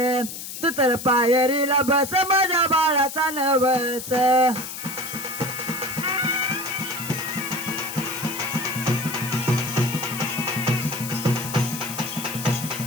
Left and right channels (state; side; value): noise; left; hiss, 9 dB below the sound